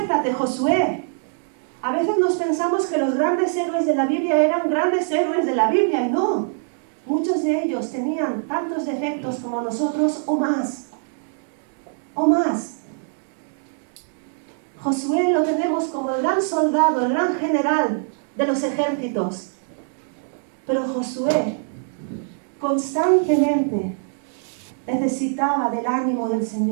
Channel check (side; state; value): left; silent; digital silence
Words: Josué. A veces nos pensamos que los grandes héroes de la Biblia eran grandes héroes de la Biblia, y no. Muchos de ellos tenían tantos defectos como nosotros o más. O más. Josué lo tenemos como el gran soldado, el gran general de los ejércitos. Pero Josué constantemente necesitaba del ánimo del